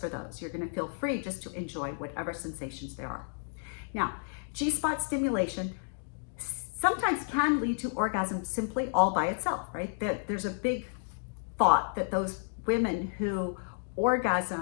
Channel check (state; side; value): silent; right; digital silence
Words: those. You're going to feel free just to enjoy whatever sensations there are. Now, G-spot stimulation sometimes can lead to orgasm simply all by itself, right? There's a big thought that those women who